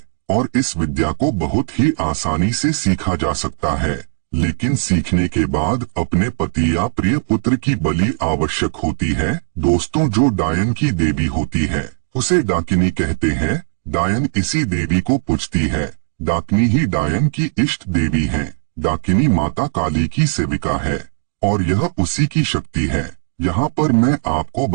और इस विद्या को बहुत ही आसानी से सीखा जा सकता है, लेकिन सीखने के बाद अपने पति या प्रिय पुत्र की बलि आवश्यक होती है। दोस्तों, जो डायन की देवी होती है उसे डाकिनी कहते हैं। डायन इसी देवी को पूजती है। डाकिनी ही डायन की इष्ट देवी है। डाकिनी माता काली की सेविका है और यह उसी की शक्ति है। यहाँ पर मैं आपको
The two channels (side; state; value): left; silent; digital silence